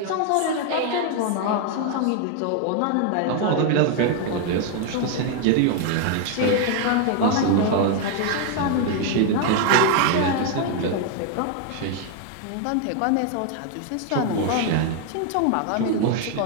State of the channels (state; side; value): different; both; correlation 0.00